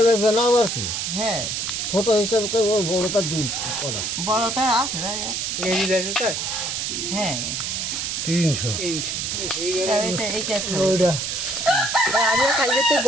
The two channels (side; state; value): right; noise; hiss, 2 dB below the sound